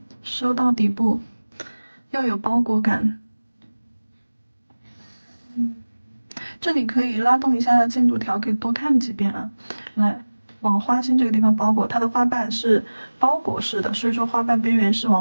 收到底部，要有包裹感。这里可以拉动一下进度条，可以多看几遍啊。来，往花心这个地方包裹，它的花瓣是包裹式的，所以说花瓣边缘是往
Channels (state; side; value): inverted; both; correlation -1.00